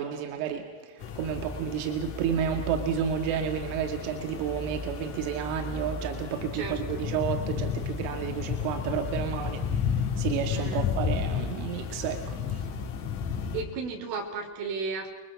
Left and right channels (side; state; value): left; late; 15 ms